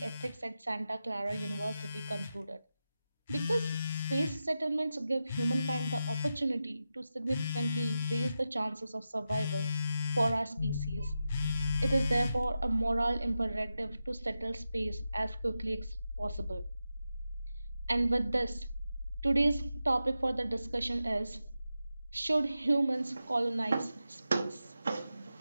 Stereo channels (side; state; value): both; inverted; correlation -0.90